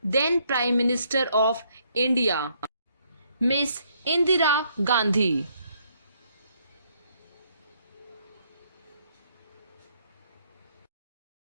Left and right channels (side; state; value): both; inverted; correlation -0.70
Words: then Prime Minister of India, Miss Indira Gandhi.